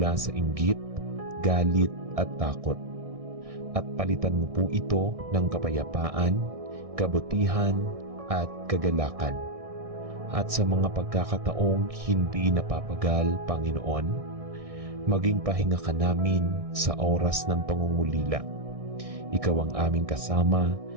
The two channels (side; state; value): left; late; 1.6 ms